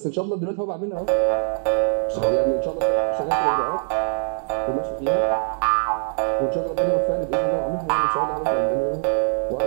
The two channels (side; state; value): left; silent; digital silence